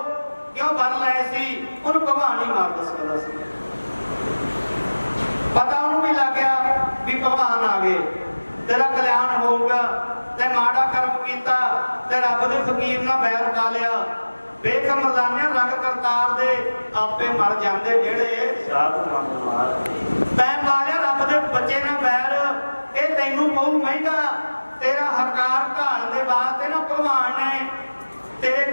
ਕਿਉਂ ਵਰ ਲਏ ਸੀ, ਉਹਨੂੰ ਭਗਵਾਨ ਹੀ ਮਾਰ ਸਕਦਾ ਸੀ। ਪਤਾ ਉਹਨੂੰ ਵੀ ਲੱਗ ਗਿਆ ਵੀ ਭਗਵਾਨ ਆ ਗਏ, ਤੇਰਾ ਕਲਿਆਣ ਹੋਊਗਾ। ਤੇ ਮਾੜਾ ਕਰਮ ਕੀਤਾ ਤੇ ਰੱਬ ਦੇ ਫਕੀਰ ਨਾਲ ਬੈਰ ਪਾ ਲਿਆ। ਵੇਖ ਮਰਦਾਨਿਆਂ ਰੰਗ ਕਰਤਾਰ ਦੇ, ਆਪੇ ਮਰ ਜਾਂਦੇ ਜਿਹੜੇ ਸਾਧ ਮੰਗ ਮਾਰ। ਤੈਂ ਪਾ ਲਿਆ ਰੱਬ ਦੇ ਬੱਚੇ ਨਾਲ ਬੈਰ, ਇਹ ਤੈਨੂੰ ਪਊ ਮਹਿੰਗਾ। ਤੇਰਾ ਹਕਾਰ ਢਾਣ ਦੇ ਵਾਸਤੇ ਨਾ ਭਗਵਾਨ ਨੇ ਤੇਰੇ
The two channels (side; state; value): both; inverted; correlation -1.00